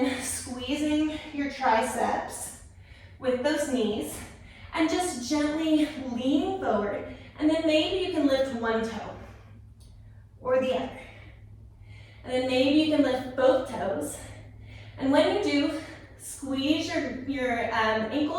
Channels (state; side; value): identical; both; correlation 1.00